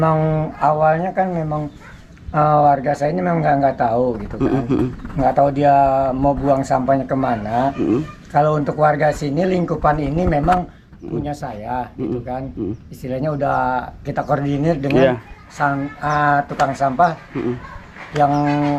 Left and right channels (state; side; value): identical; both; correlation 1.00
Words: awalnya kan memang warga saya ini memang nggak tahu gitu kan. Nggak tahu dia mau buang sampahnya kemana. Kalau untuk warga sini lingkupan ini memang punya saya gitu kan. Istilahnya udah kita koordinir dengan tukang sampah yang